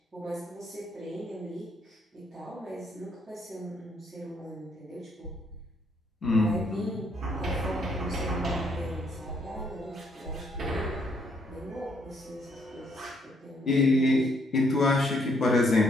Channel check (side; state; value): both; normal; correlation 0.70